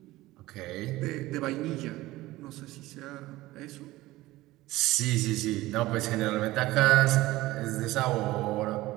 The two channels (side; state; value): left; quieter; 17.9 dB